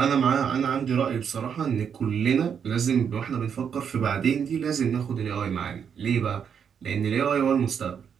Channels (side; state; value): left; quieter; 7.4 dB